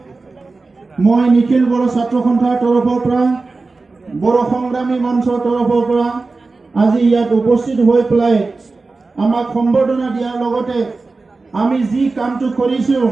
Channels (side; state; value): left; quieter; 3.8 dB